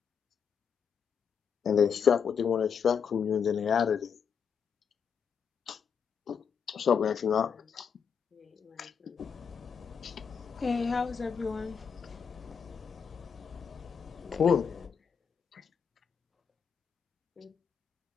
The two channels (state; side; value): quieter; right; 6.7 dB